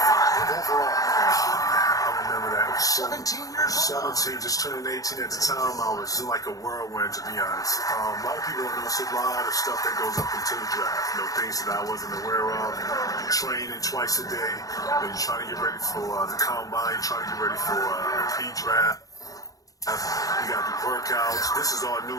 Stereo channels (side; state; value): right; late; 0.17 ms